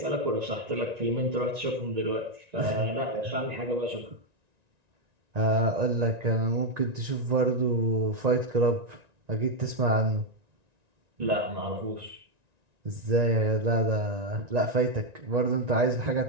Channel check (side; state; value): left; late; 1.9 ms